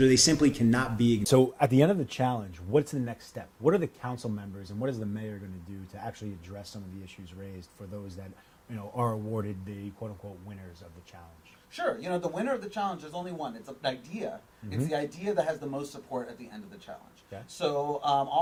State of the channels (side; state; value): both; identical; correlation 1.00